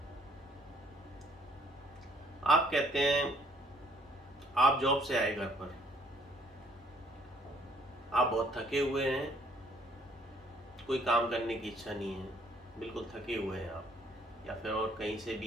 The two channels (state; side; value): normal; both; correlation 0.63